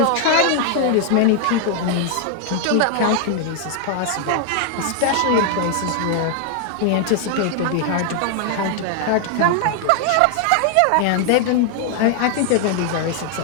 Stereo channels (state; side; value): different; both; correlation 0.00